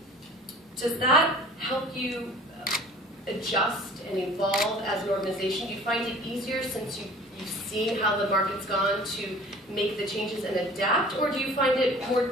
does that help you adjust and evolve as an organization? Do you find it easier since you've seen how the market's gone to make the changes and adapt, or do you find it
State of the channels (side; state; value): both; normal; correlation 0.47